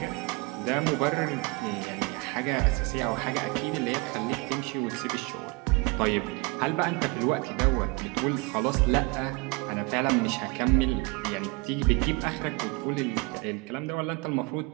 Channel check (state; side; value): quieter; left; 26.8 dB